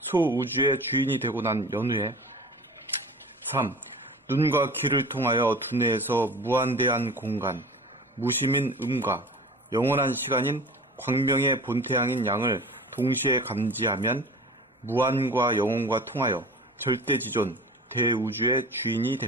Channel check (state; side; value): normal; both; correlation 0.39